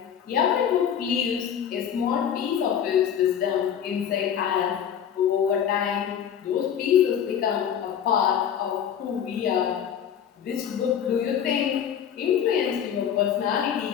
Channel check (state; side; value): quieter; right; 8.7 dB